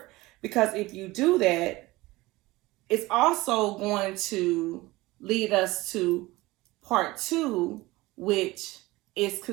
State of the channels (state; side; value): quieter; left; 20.1 dB